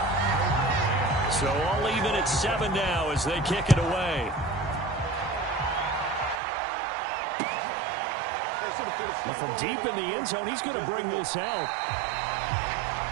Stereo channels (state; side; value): drops out; left; at 6.4 s